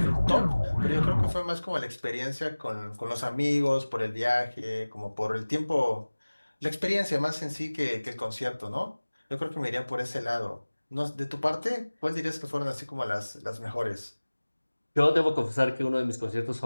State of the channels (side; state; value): both; inverted; correlation -1.00